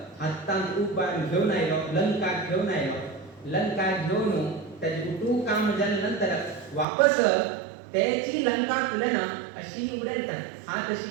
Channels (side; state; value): left; drops out; at 6.9 s